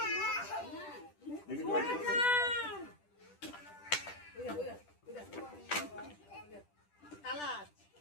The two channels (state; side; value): late; right; 10 ms